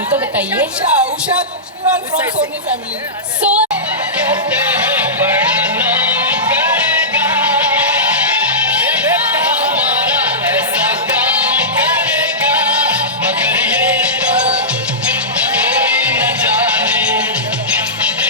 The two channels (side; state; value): both; normal; correlation -0.17